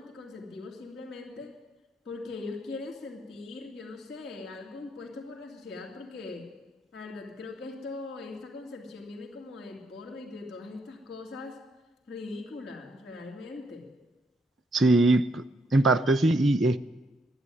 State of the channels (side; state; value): both; normal; correlation 0.75